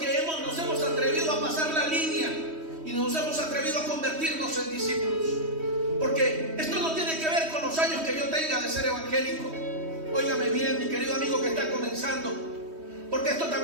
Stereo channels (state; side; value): late; left; 3.1 ms